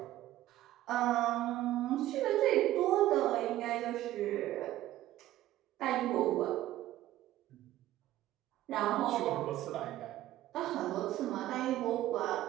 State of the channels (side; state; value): left; quieter; 14.5 dB